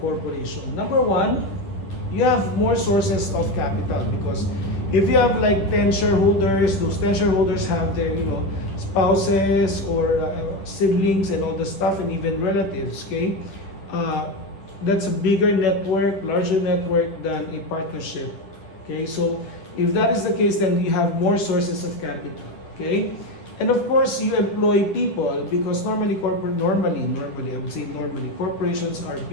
Number one, you have more sources of capital, because if you have like 10 shareholders, those 10 shareholders have their spouses or siblings and all the stuff, and even relatives, okay. That's a bigger network, larger network than a partnership, okay. So if that is the case, then you have more sources of capital, okay. And of course, you employ people, because normally I would say normally corporations are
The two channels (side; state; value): right; late; 10 ms